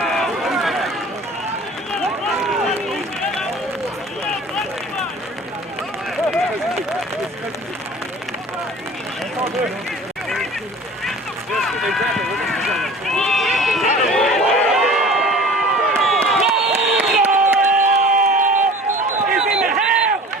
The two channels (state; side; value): normal; both; correlation 0.43